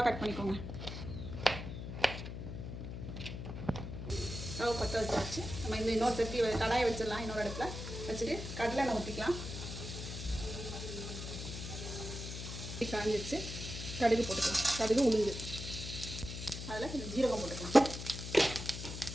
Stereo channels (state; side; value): noise; left; hum, 7 dB below the sound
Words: கட் பண்ணிக்கோங்க. ஸ்டவ் பற்ற வச்சாச்சு. நம்ம இன்னொரு சட்டி கடாயை வச்சிடலாம். இன்னொரு இடத்துல வச்சுட்டு கடலை எண்ணெய் ஊற்றிக்கலாம். காஞ்சிச்சு. கடுகு போட்டுக்கலாம். கடுகு, உளுந்து, அதில் கொஞ்சம் ஜீரகம் போட்டுக்கலாம்.